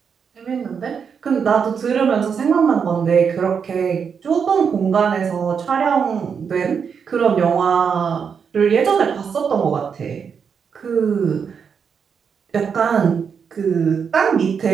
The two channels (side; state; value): left; quieter; 6.6 dB